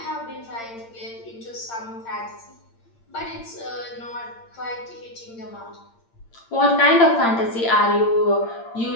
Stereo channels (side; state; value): right; late; 8.7 ms